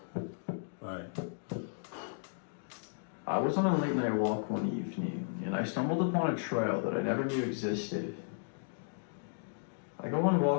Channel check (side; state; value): right; silent; digital silence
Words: Right. I was on a late night walk one evening, and I stumbled upon a trail that I never knew existed. I go on